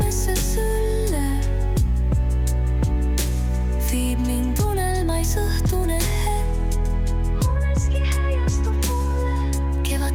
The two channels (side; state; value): both; identical; correlation 1.00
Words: sülle, viib mind unelmais õhtune hetk. Uneski häiastub mulle